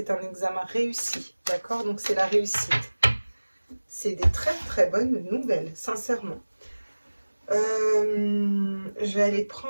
un examen réussi, d'accord? Donc c'est la réussite. C'est des très très bonnes nouvelles, sincèrement. Je vais aller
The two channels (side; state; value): both; inverted; correlation -1.00